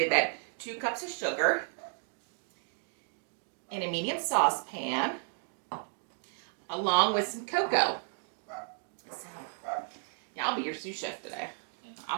that. 2 cups of sugar in a medium saucepan, along with some cocoa. So, yeah, I'll be your sous chef today. I'll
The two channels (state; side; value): silent; left; 55 dB below the other